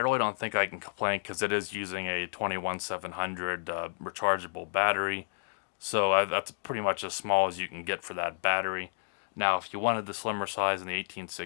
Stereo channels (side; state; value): right; silent; digital silence